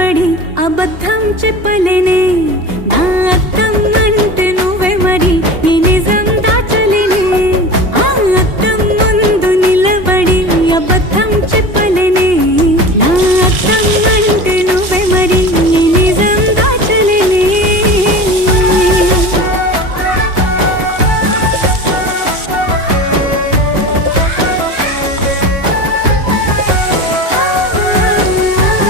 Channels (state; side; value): late; left; 2.8 ms